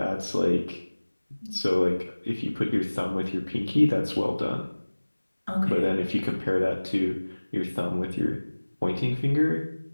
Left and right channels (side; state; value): both; inverted; correlation -1.00